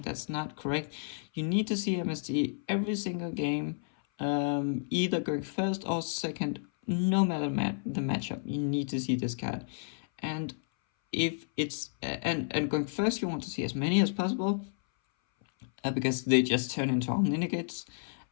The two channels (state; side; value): silent; right; 57 dB below the other